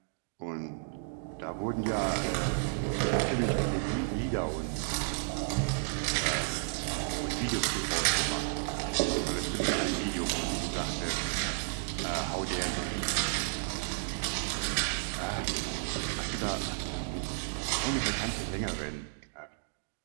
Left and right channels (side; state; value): left; silent; digital silence